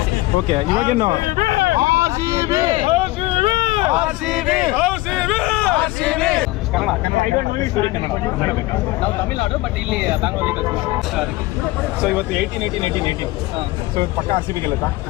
ಓಕೆ, ಇವಾಗೇನು ನಾವು ತಮಿಳ್ನಾಡು, ಬಟ್ ಇಲ್ಲಿ ಬ್ಯಾಂಗ್ಳೂರಲ್ಲಿ. ಸೊ ಇವತ್ತು 18. ಸೊ ಪಕ್ಕ RCB ಗೆಲ್ಲುತ್ತಾ?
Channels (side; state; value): right; quieter; 19.6 dB